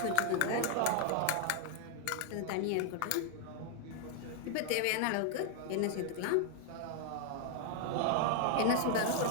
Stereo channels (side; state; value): both; different; correlation 0.00